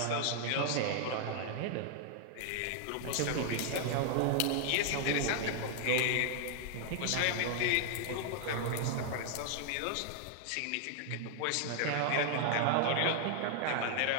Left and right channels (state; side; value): different; both; correlation 0.00